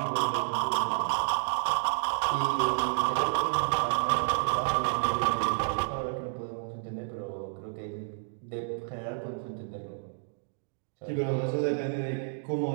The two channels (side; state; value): left; silent; digital silence